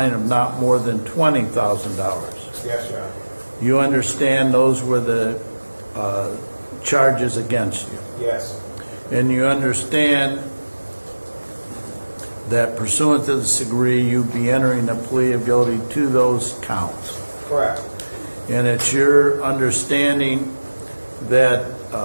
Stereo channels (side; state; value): both; inverted; correlation -1.00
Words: of not more than $20,000. Yes, Your Honor. You understand those were the charges against you? Yes. And you understand that pursuant to this degree, you'd be entering a plea of guilty to those counts. Correct. And it's your understanding that